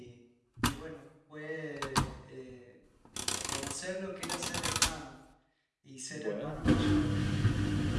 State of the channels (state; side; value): identical; both; correlation 1.00